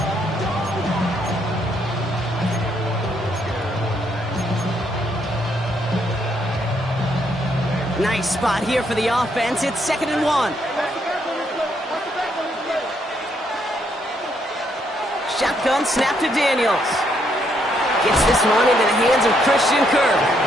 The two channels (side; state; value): both; normal; correlation 0.73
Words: Nice spot here for the offense. It's 2nd and 1. Shotgun snap to Daniels. Gets this one into the hands of Christian Kirk.